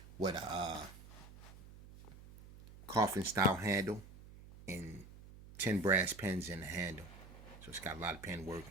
with a coffin style handle and 10 brass pins in the handle. So it's got a lot of pen work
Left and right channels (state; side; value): noise; right; hum, 17 dB below the sound